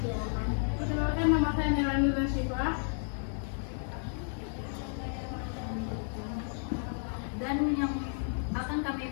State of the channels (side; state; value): right; silent; digital silence